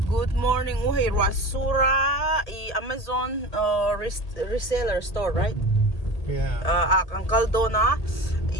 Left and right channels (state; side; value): late; right; 1.8 ms